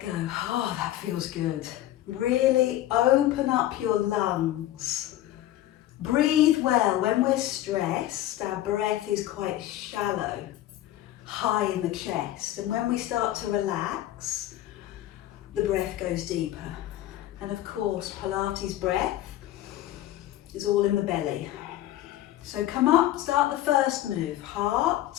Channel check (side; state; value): right; quieter; 13.9 dB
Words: go. Oh, that feels good. Really open up your lungs. Breathe well. When we're stressed, our breath is quite shallow, high in the chest. And when we start to relax, the breath goes deeper. And of course, Pilates breath is all in the belly. So come up, start the first move. Heart,